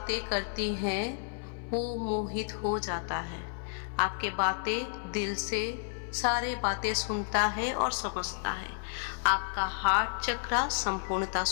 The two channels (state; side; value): silent; right; 57 dB below the other